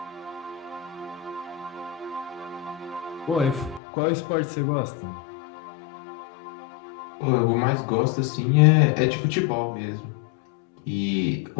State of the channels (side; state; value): right; drops out; at 3.8 s